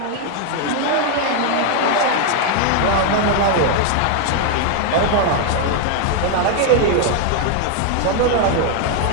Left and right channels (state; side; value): different; both; correlation 0.00